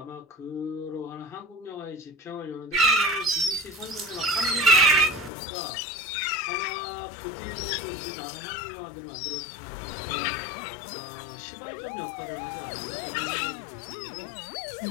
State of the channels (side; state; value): right; drops out; at 5.3 s